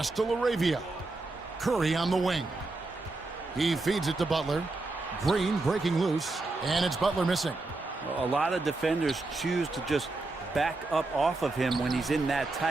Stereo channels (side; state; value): left; quieter; 3.2 dB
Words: to LaRavia. Curry on the wing. He feeds it to Butler. Green breaking loose. And it's Butler missing. A lot of defenders choose to just back up off of him when he's in that